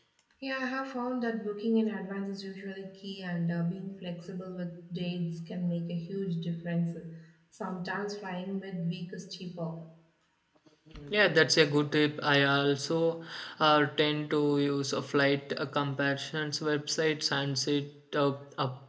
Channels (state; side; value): identical; both; correlation 1.00